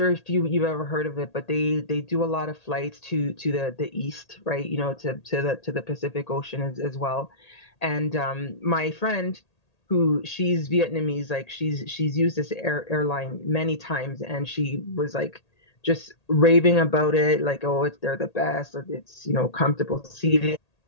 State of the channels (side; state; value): right; late; 1.8 ms